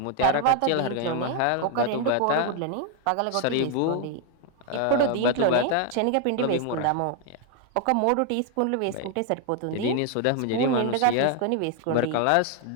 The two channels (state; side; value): different; both; correlation 0.00